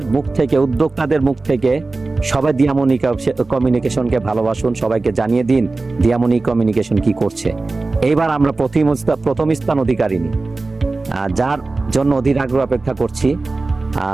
মুখ থেকে, উদ্যোক্তাদের মুখ থেকে সবাই দিয়ামনি কমিউনিকেশনকে ভালোবাসুন, সবাইকে জানিয়ে দিন দিয়ামনি কমিউনিকেশন কি করছে। এইবার আমরা প্রথম স্থান অধিকারিণী, যার জন্য অধীর আগ্রহ অপেক্ষা করছি।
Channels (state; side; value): quieter; left; 3.5 dB